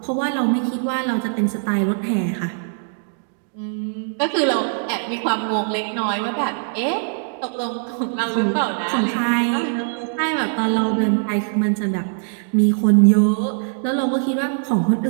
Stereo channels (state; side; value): silent; left; digital silence